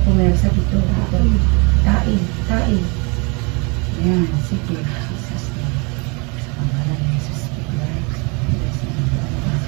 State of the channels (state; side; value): quieter; left; 31.0 dB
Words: pumersa dito. Tae. Tae. Yan. Sige. Jesus name. Sa pangalan ni Jesus. Speak life.